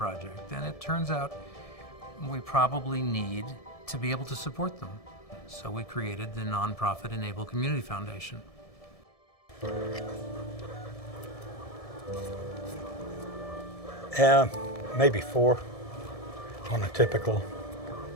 And it turns out we probably need to be able to support them. So we created the nonprofit e-NABLE Community Foundation. Maybe 4 on a typical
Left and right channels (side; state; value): right; late; 1.7 ms